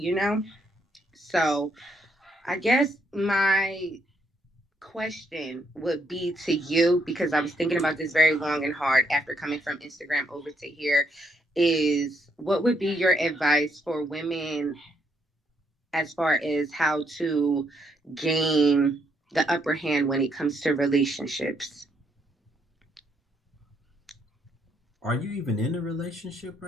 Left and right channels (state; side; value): normal; both; correlation 0.73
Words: So I guess my question would be to you, because I was thinking about this very long and hard after coming from Instagram over to here, is what would be your advice for women as far as how to gain the upper hand when it comes to relationships? Are you even in a relationship